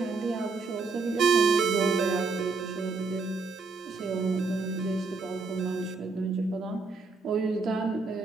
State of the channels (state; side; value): quieter; left; 4.2 dB